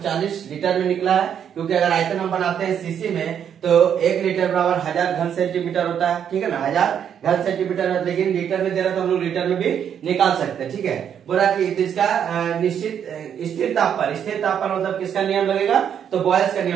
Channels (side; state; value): left; quieter; 8.6 dB